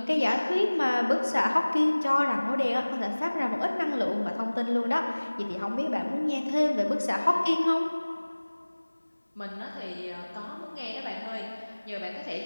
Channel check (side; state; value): both; inverted; correlation -1.00